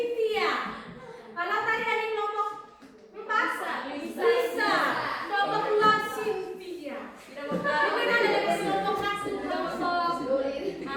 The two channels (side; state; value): both; identical; correlation 1.00